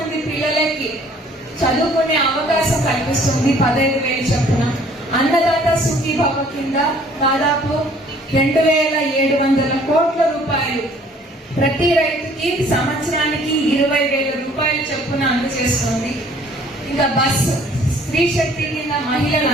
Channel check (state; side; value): normal; both; correlation 0.57